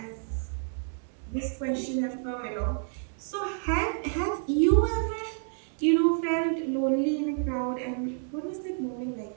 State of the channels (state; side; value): silent; left; digital silence